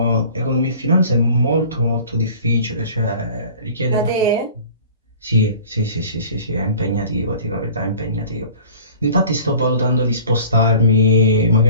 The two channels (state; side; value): inverted; both; correlation -0.46